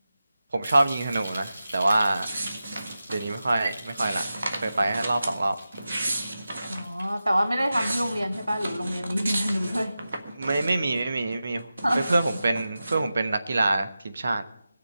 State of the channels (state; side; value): inverted; both; correlation -0.93